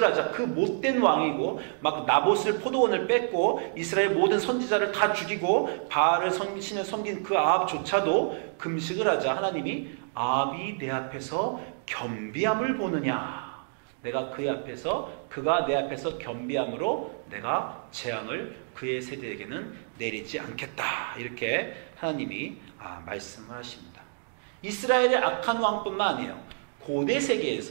하자 그 못된 왕이고 막 나봇을 포도원을 뺏고 이스라엘 모든 선지자를 다 죽이고 바알을 신을 섬긴 그 아합조차도 금식을 하자 하나님이 아합이 내 앞에서 겸비함을 보느냐. 내가 그의 앞에서, 그가 내 앞에서 겸비함으로 내가 재앙을 그의 세대에게는 내리지 않겠다. 이렇게 하나님이 말씀을 하십니다. 이스라엘의 악한 왕뿐만 아니에요. 고대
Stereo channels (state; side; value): silent; left; digital silence